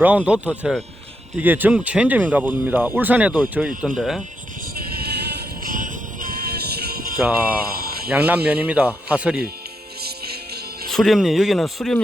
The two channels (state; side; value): normal; both; correlation 0.82